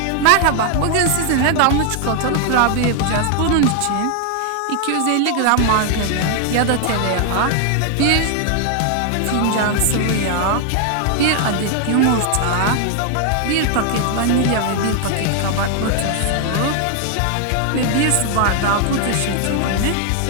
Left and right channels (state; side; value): different; both; correlation 0.00